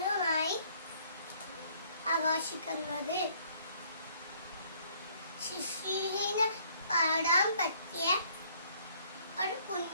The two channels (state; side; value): inverted; both; correlation -0.62